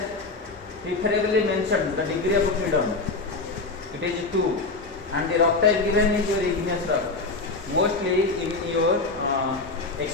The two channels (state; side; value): quieter; right; 3.6 dB